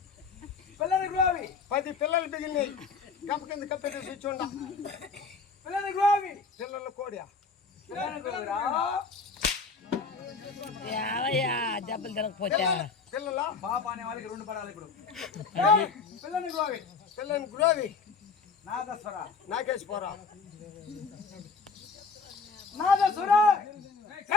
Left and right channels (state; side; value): quieter; right; 4.7 dB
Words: పిల్లల గోవి 10 పిల్లలు బిగినాయి గంప కింద కప్పెట్టి కూర్చోండా పిల్లల గోవి పిల్లల కోడియా పిల్లల గోవిరా ఏమయ్యా దెబ్బలు తిరగపోతే పిల్లల పాప అనే వాళ్ళకి 2 పడాలి ఇప్పుడు పిల్లల గోవి పిల్లని గురోవి నాదస్వర నాకేసి పోరా నాదస్వర